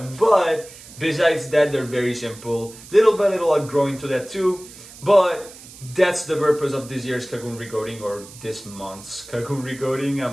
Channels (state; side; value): noise; right; hiss, 18 dB below the sound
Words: besides that, they're very simple. Little by little I'll grow into that too. But that's the purpose of this year's Cocoon Recoding, or this month's Cocoon Recoding.